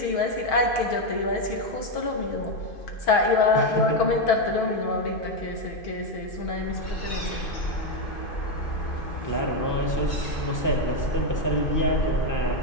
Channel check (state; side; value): late; right; 2.5 ms